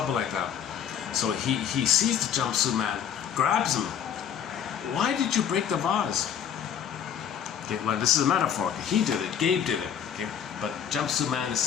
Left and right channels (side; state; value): right; quieter; 8.5 dB